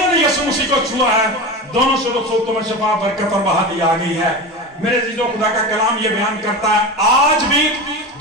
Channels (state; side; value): normal; both; correlation 0.26